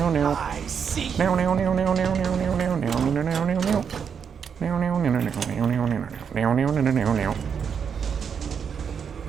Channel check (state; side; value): quieter; left; 7.0 dB